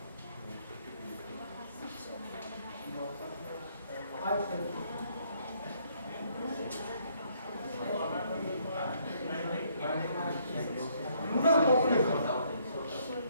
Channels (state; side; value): inverted; both; correlation -0.68